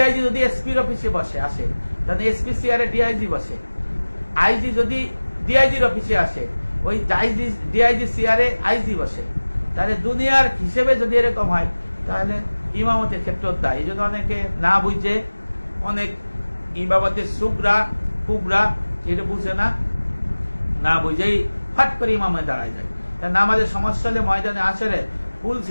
যদি এসপির অফিসে বসে আসে, তাহলে এসপি চেয়ারে ডিআইজি বসে। আইজি যদি ডিআইজির অফিসে আসে, ওই ডিআইজি চেয়ারে আইজি বসে। তাহলে দুনিয়ার হিসেবে যদি এরকম হয়, তাহলে ইমামতের ক্ষেত্রে দায়। এই জন্য অনেকে না বুঝে, অনেক ইমামতের সুগরা কুবরা এটা বুঝে না, না বুঝেই ফাট করে ইমামে দাঁড়ায় যায়। নামাজের সমস্যা হলে ময়দানে আসরে ফুল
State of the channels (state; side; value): inverted; both; correlation -1.00